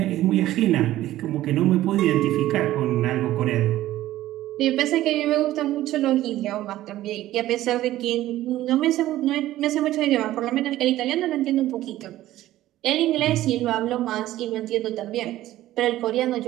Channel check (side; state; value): left; quieter; 14.7 dB